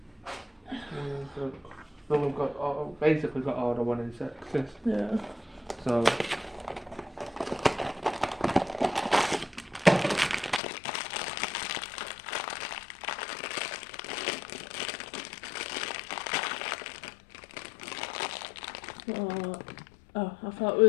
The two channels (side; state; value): right; drops out; at 10.6 s